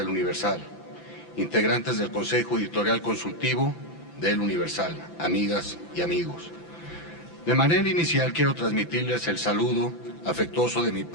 Universal, integrantes del Consejo Editorial Consultivo del Universal, amigas y amigos. De manera inicial quiero transmitirles el saludo afectuoso de mi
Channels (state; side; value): late; right; 5.9 ms